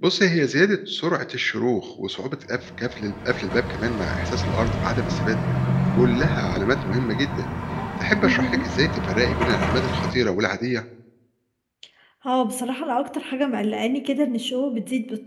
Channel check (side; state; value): both; identical; correlation 1.00